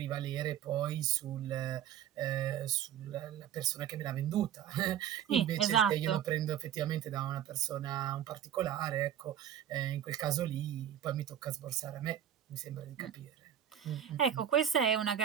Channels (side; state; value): left; quieter; 9.9 dB